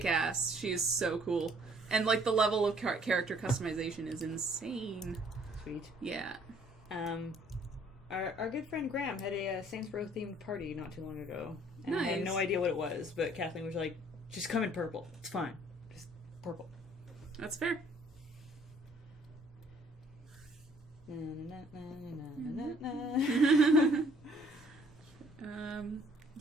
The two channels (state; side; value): normal; both; correlation 0.60